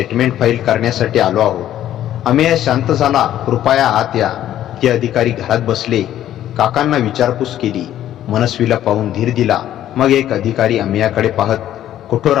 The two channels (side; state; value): right; quieter; 12.0 dB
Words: फाईल करण्यासाठी आलो आहोत. अमेया शांत झाला. कृपया आत या. ते अधिकारी घरात बसले. काकांना विचारपूस केली. मनस्वीला पाहून धीर दिला. मग एक अधिकारी अमेयाकडे पाहत कठोर